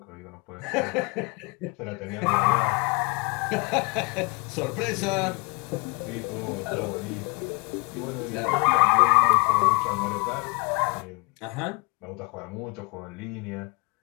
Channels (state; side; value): quieter; right; 30.6 dB